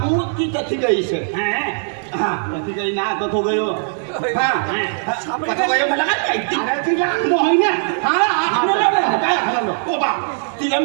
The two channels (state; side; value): silent; left; 66 dB below the other